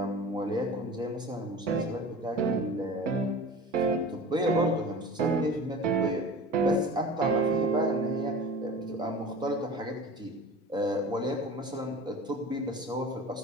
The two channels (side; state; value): both; normal; correlation 0.37